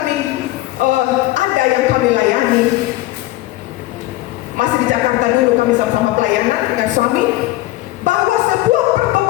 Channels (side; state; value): right; quieter; 17.3 dB